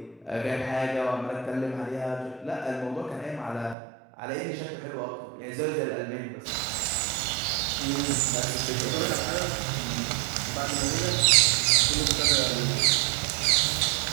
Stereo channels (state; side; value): drops out; left; at 3.8 s